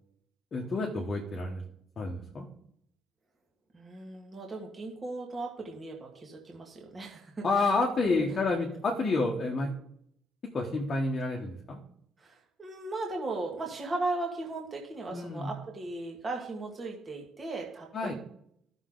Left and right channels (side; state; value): both; normal; correlation 0.75